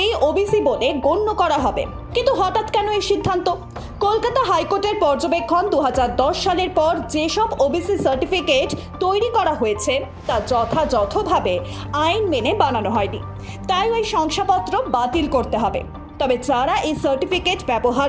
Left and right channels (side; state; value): both; identical; correlation 1.00